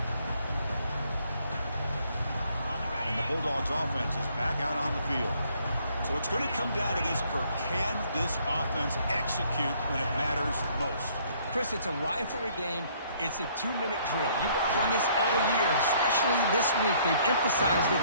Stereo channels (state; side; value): inverted; both; correlation -0.63